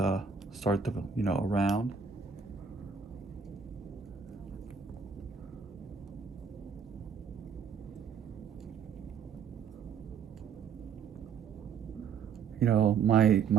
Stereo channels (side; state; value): left; quieter; 6.4 dB